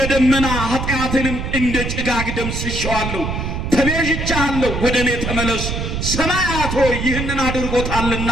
ደመና ኃጢአትንም እንደ ጭጋግ ደምስሼዋለሁ። ተቤዥቼሃለሁ፣ ወደ እኔ ተመለስ። ሰማያት ሆይ ይህንን አድርጎታልና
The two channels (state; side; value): noise; right; rumble, 3 dB below the sound